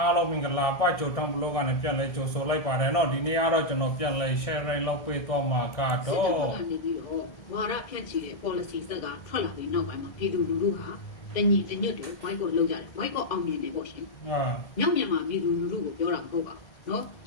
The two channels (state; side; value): late; right; 2.0 ms